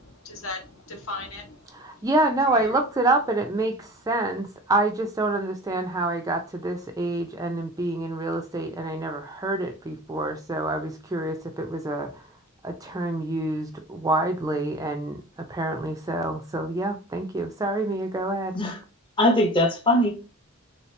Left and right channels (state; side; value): normal; both; correlation 0.40